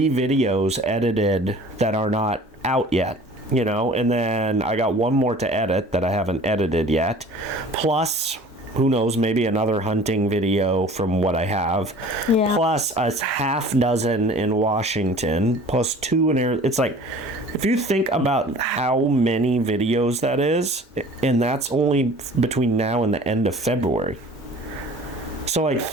videos edited that are not out yet. You know, and then I got one more to edit that I haven't edited yet. Plus, who knows, maybe another hunting video from what I have. Plus a half dozen in Washington. Plus 2 in Arizona. It's like, if you think about how many videos that is, and that's only between now and the end of February. So, like,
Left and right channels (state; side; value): normal; both; correlation 0.46